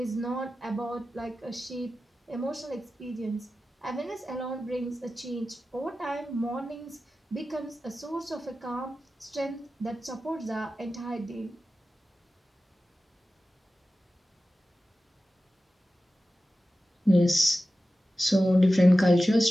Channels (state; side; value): normal; both; correlation 0.94